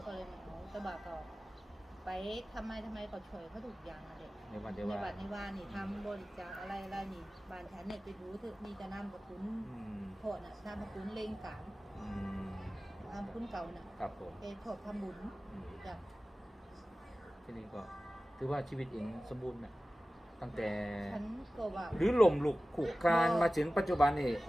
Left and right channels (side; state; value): both; normal; correlation 0.96